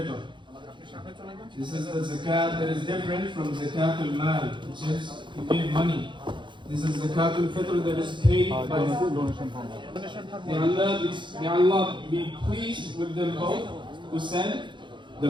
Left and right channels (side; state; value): left; late; 0.23 ms